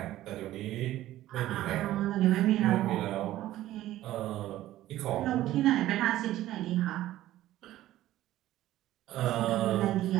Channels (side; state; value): left; quieter; 14.5 dB